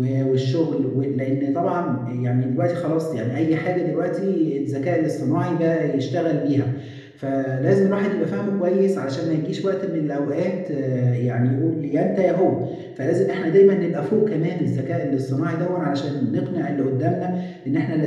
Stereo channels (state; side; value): identical; both; correlation 1.00